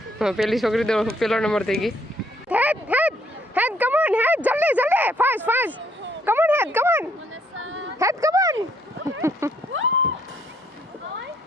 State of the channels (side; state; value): both; normal; correlation 0.68